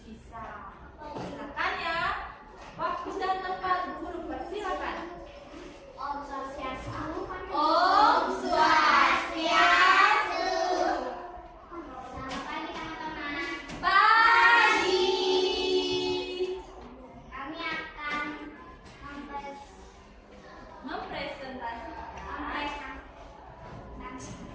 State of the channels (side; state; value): both; identical; correlation 1.00